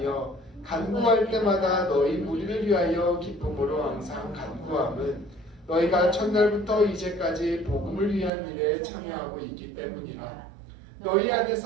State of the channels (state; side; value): drops out; left; at 8.3 s